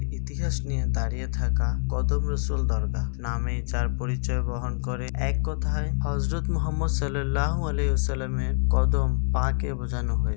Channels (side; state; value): right; silent; 61 dB below the other